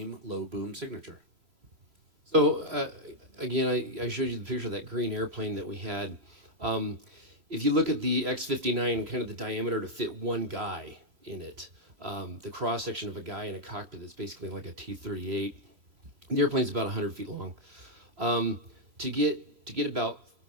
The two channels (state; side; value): late; left; 3.1 ms